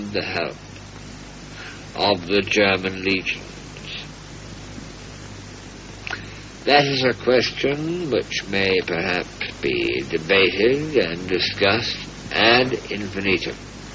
the help of the German legions? That is a question which may perhaps be debated and discussed ad infinitum.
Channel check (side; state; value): both; identical; correlation 1.00